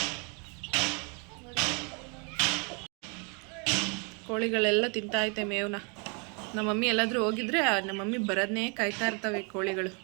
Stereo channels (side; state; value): left; quieter; 34.7 dB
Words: ಕೋಳಿಗಳೆಲ್ಲ ತಿಂತಾಯ್ತೆ ಮೇವನ್ನ. ನಮ್ಮ ಮಮ್ಮಿ ಎಲ್ಲಾದರೂ ಹೋಗಿದ್ರೆ ನಮ್ಮ ಮಮ್ಮಿ ಬರೋದನ್ನೇ ಕಾಯ್ತಾ ಇರ್ತವೆ ಕೋಳಿಗಳು.